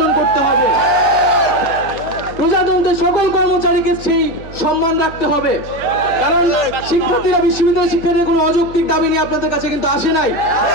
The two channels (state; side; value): noise; right; hum, 16 dB below the sound